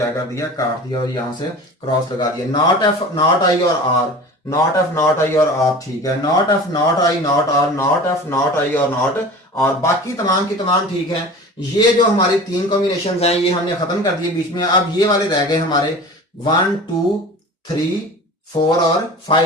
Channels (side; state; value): both; normal; correlation 0.37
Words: कर दिया, काट दिया और यहां से क्रॉस लगा दिया। नॉट एफ नॉट आई और R, not F not I और आर ठीक है। Not F not I not R, not F not I और नॉट, और बाकी तमाम की तमाम ठीक है। ये जो हमारी तीन कॉम्बिनेशन हैं ये हमने खत्म कर दिए बीच में। अब ये वाले रह गए हमारे 1 2 3 4 और